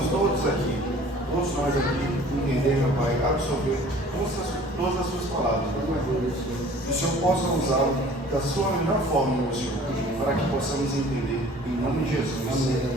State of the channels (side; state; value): both; normal; correlation 0.49